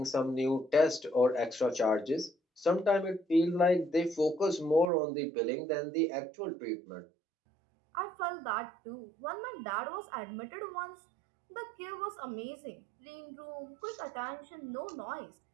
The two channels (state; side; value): drops out; left; at 4.9 s